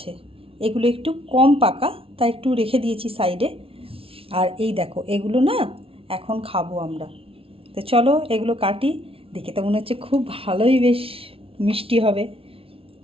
এগুলো একটু কম পাকা তাই একটু রেখে দিয়েছি সাইডে। আর এই দেখো এগুলো না এখন খাবো আমরা। তো চলো এগুলো কাটি। দেখে তো মনে হচ্ছে খুব ভালোই, বেশ মিষ্টি হবে।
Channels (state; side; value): late; left; 0.26 ms